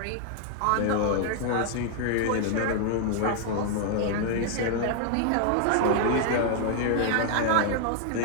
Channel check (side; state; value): both; different; correlation 0.00